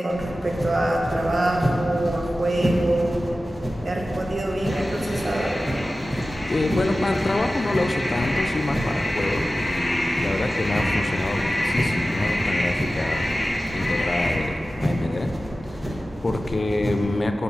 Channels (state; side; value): normal; both; correlation 0.95